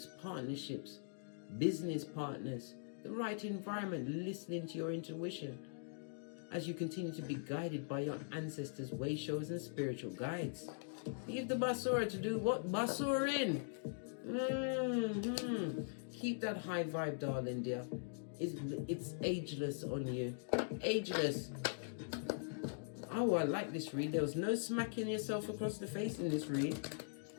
partnerships, business partners, the right environment, listening to your intuition as you continue to be guided by your ancestors, way showers, and spiritual guides. Leave the basura to do what? Basura in. Keep that high vibe, darling dear. It's ageless on you. Ageless. Oh, I like this read. There was no smacking yourself across the face in this read.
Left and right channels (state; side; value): silent; right; digital silence